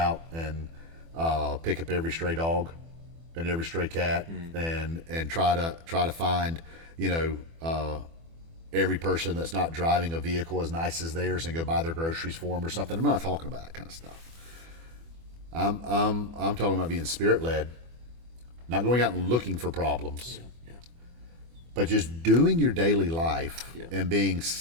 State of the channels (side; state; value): left; late; 24 ms